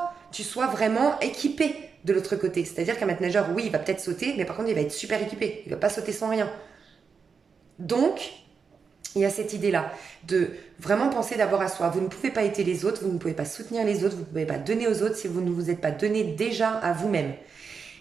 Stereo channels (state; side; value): quieter; left; 5.7 dB